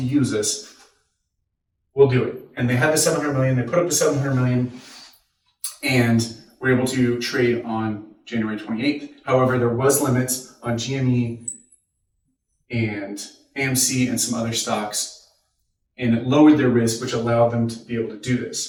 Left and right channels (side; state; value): both; identical; correlation 1.00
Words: use us. We'll do it. And they had the 700 million. They put up the 700 million and were able to trade on January 28th. However, there was limits on GME and AMC and some other stocks and it lowered their risk, which allowed them to be able to do